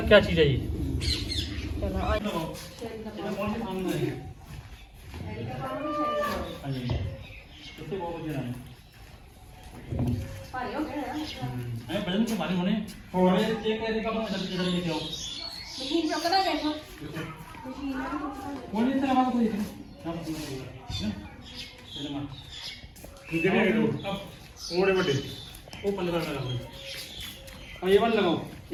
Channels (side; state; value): both; identical; correlation 1.00